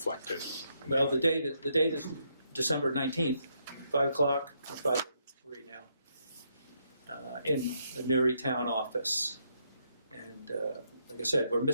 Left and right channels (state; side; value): inverted; both; correlation -0.77